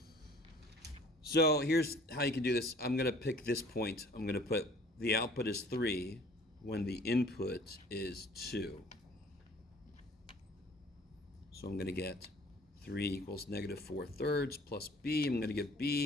So here's how you can do this. I'm going to pick this point. I'm going to put the output is 3 when the input is 2. So I'm going to get 3 equals negative 4/3 plus b. I'm going to get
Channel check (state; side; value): normal; both; correlation 0.51